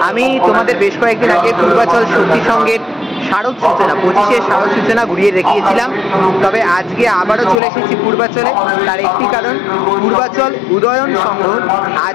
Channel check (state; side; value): drops out; right; at 7.6 s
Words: আমি তোমাদের বেশ কয়েকদিন আগে পূর্বাচল শক্তি সংঘের শারদ সূচনা 25-এর শারদ সূচনা ঘুরিয়ে দেখিয়েছিলাম। তবে আজকে আবারও চলে এসেছি পূর্বাচলে। তার একটি কারণ, পূর্বাচল উদয়ন সংঘ